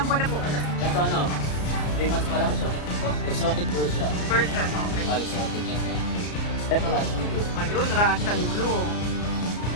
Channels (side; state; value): right; late; 34 ms